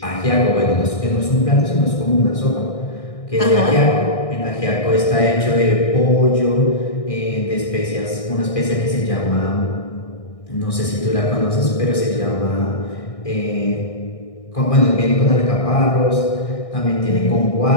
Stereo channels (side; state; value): right; late; 1.6 ms